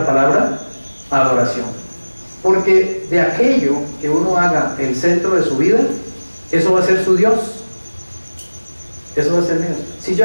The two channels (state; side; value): inverted; both; correlation -1.00